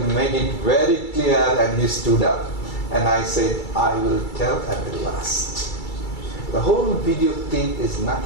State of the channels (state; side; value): late; right; 2.3 ms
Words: made it very clear and he stood up. And I said, I will tell at the last. The whole video clip is